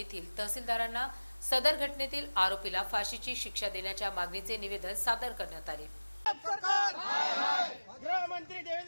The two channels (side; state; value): both; inverted; correlation -1.00